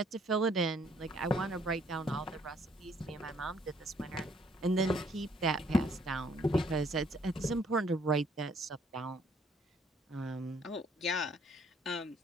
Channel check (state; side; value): normal; both; correlation 0.65